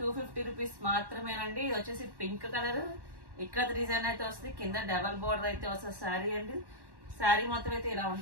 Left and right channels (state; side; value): late; left; 1.1 ms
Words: 250 రూపీస్ మాత్రమేనండి. ఇది వచ్చేసి పింక్ కలర్ ఇక్కడ డిజైన్ అయితే వస్తుంది, కింద డబల్ బోర్డర్ అయితే వస్తుంది శారీ అండి. శారీ మొత్తం అయితే ఇలా